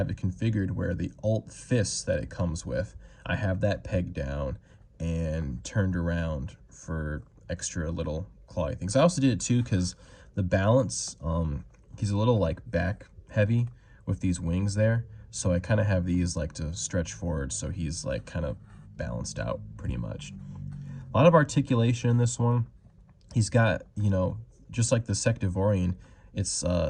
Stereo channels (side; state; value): both; identical; correlation 1.00